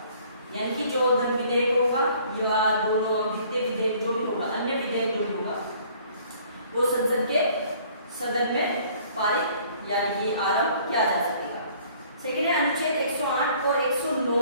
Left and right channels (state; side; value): inverted; both; correlation -0.57